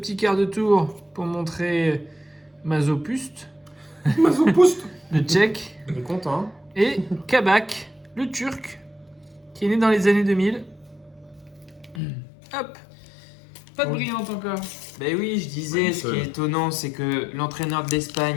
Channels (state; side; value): drops out; right; at 12.0 s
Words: quart de tour pour montrer Mazopuste, Mazopoust. le tchèque, Il est content. Hein. et Kabak, le turc, qui est né dans les années 2000. Hop, pas de Oui. brillante encore. Ben oui, je disais, Ouais, ce qui est étonnant, c'est que l'entraîneur de